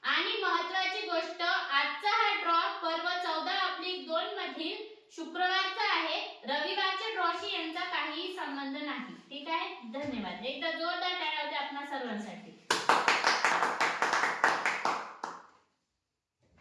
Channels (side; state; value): both; identical; correlation 1.00